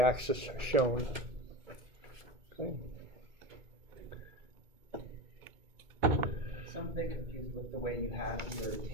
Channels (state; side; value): late; left; 2.2 ms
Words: shown. Okay. So I'm a bit confused with the way you have your